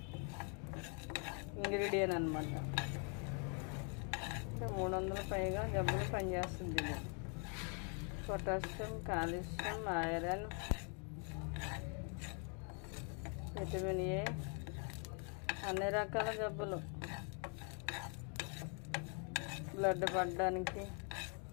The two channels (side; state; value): right; quieter; 39.4 dB